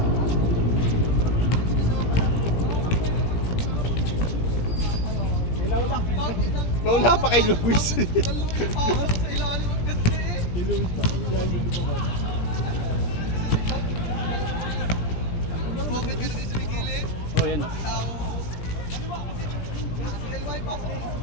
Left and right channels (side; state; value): right; late; 17 ms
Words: Wala pa kay Luis. Oh, yan.